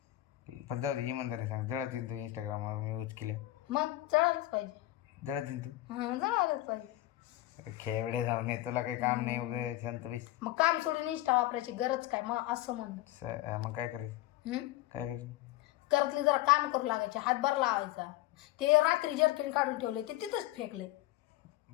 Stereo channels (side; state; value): right; quieter; 16.2 dB